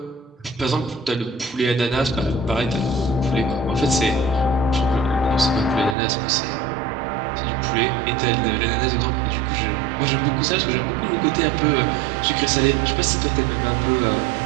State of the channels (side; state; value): left; drops out; at 6.0 s